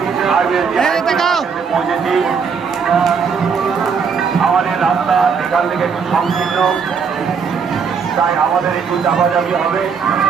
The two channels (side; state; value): left; quieter; 6.0 dB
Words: পৌঁছেছি। আমাদের রাস্তা এখান থেকে একটু সংকীর্ণ, তাই আমাদের একটু চাপাচাপি হবে।